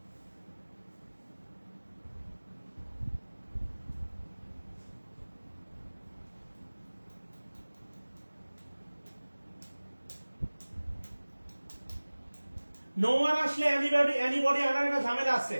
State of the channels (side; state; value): both; inverted; correlation -1.00